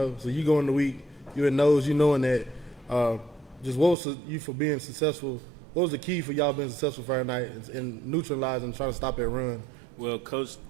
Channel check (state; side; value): drops out; left; at 4.0 s